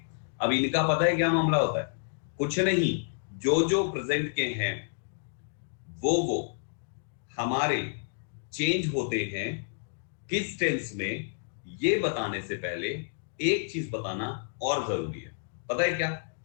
अब इनका पता है क्या मामला होता है? कुछ नहीं, जो जो प्रेजेंट के हैं वो हमारे चेंज होते हैं किस टेंस में, ये बताने से पहले एक चीज बताना और जरूरी है। पता है क्या?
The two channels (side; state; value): right; silent; digital silence